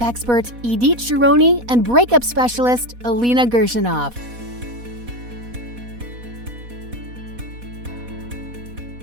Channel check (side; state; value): left; late; 4.1 ms